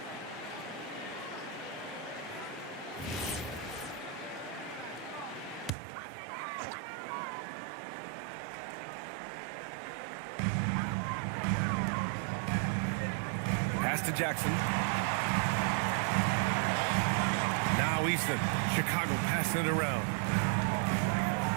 Pass to Jackson. Now Easton. Chicago passing it around.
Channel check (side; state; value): left; drops out; at 5.7 s